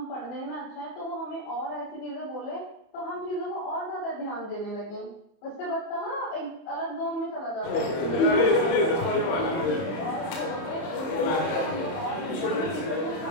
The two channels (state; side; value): late; right; 31 ms